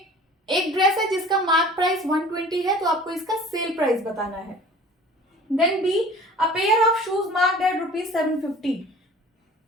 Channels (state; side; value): normal; both; correlation 0.45